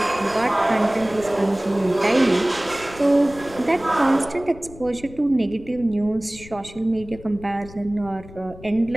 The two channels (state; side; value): noise; left; rumble, 18 dB below the sound